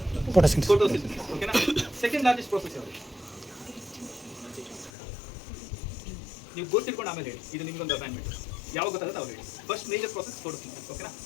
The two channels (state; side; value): drops out; right; at 4.9 s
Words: ಫೋಟೋಸಿಂಥಸಿಸ್. ಓಕೆನಾ? ಸೆಕೆಂಡ್ ಲಾರ್ಜೆಸ್ಟ್ ಪ್ರಾಸೆಸ್ ಯಾವುದು? ನೀವು ಗೊತ್ತಿಟ್ಕೊಂಡು ಆಮೇಲೆ ಹೇಳಿ, ಇದು ನಿಮ್ಗೊಂದು ಅಸೈನ್ಮೆಂಟ್. ಯಾವಾಗ ಗೊತ್ತಾಗುತ್ತೆ ಅವ್ರು ಹೇಳಿ. First major process photosynthesis. ಓಕೆನಾ?